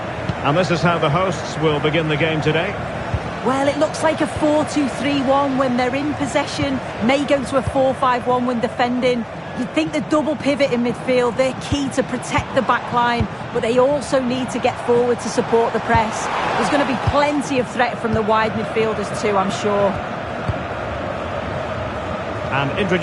And this is how the hosts will begin the game today. Well, it looks like a 4-2-3-1 when they're in possession. May go to a 4-5-1 when defending. You'd think the double pivot in midfield, they're key to protect the back line, but they also need to get forward to support the press. There's going to be plenty of threat from the wide midfielders too, I'm sure. And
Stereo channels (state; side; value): identical; both; correlation 1.00